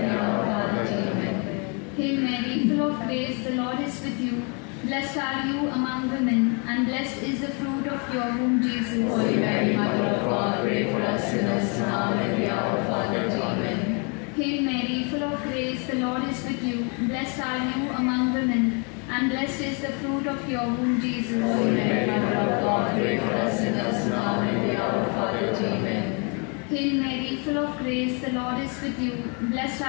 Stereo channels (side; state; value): right; quieter; 35.3 dB